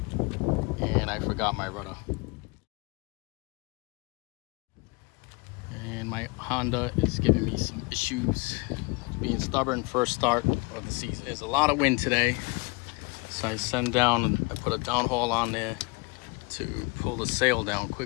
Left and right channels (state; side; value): quieter; right; 28.6 dB